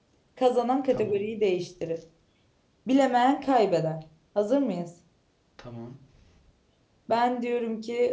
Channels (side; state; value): both; identical; correlation 1.00